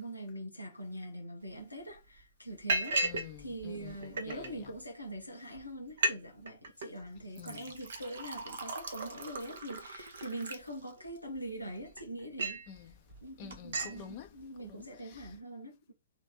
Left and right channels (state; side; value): inverted; both; correlation -0.66